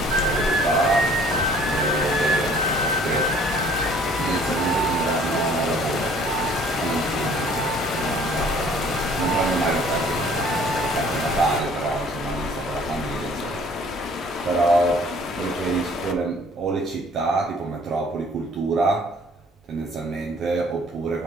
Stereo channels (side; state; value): both; normal; correlation 0.55